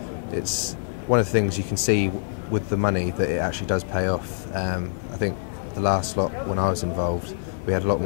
It's one of the things you can see with the money that it actually does pay off. I think the last lot when I was involved, we had a lot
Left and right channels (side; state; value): right; silent; digital silence